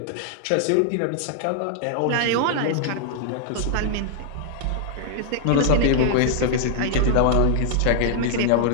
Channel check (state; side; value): different; both; correlation -0.01